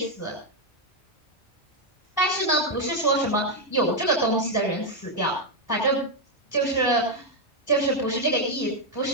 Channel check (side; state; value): both; normal; correlation 0.02